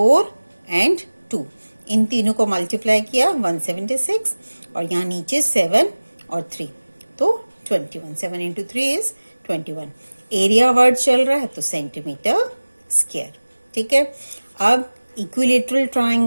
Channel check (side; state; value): both; inverted; correlation -1.00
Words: एंड 2। इन तीनों को मल्टीप्लाई किया 176 और यहाँ नीचे 7 और 3 तो 21। 7 इंटू 3 इज 21। एरिया वर्ड चल रहा है तो सेंटीमीटर स्क्वायर। ठीक है, अब इक्विलेटरल